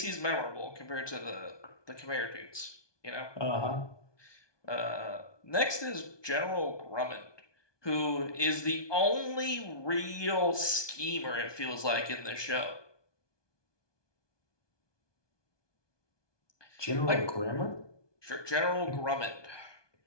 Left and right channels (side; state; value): right; late; 1.2 ms